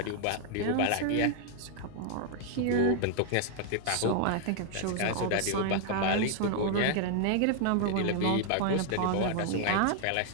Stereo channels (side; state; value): both; different; correlation 0.00